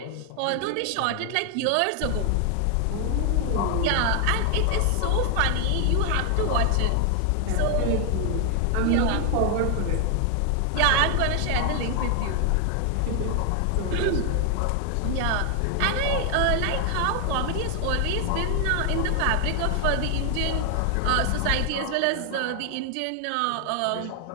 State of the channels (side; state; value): both; different; correlation 0.00